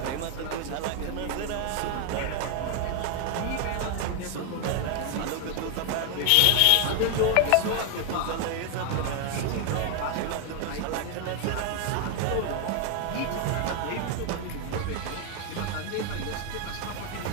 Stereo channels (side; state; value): both; different; correlation 0.01